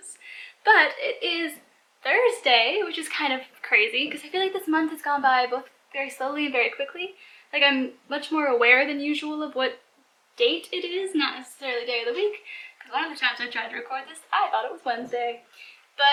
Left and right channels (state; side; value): identical; both; correlation 1.00